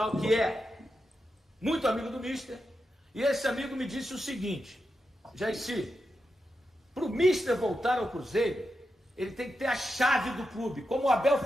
que é muito amigo do Mister, e esse amigo me disse o seguinte: Jairci, para o Mister voltar ao Cruzeiro, ele tem que ter a chave do clube, como o Abel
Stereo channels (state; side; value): normal; both; correlation 0.88